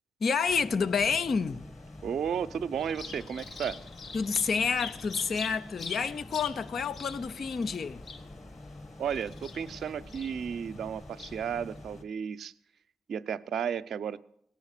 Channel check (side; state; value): both; normal; correlation 0.73